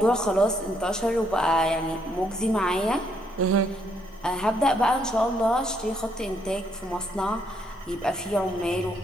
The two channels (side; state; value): both; normal; correlation 0.72